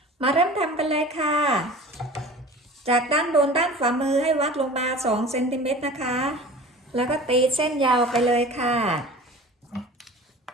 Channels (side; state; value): both; normal; correlation 0.40